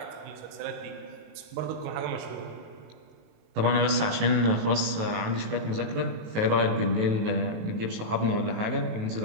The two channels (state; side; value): late; left; 18 ms